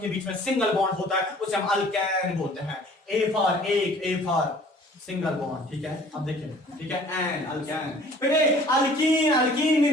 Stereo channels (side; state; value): both; normal; correlation 0.52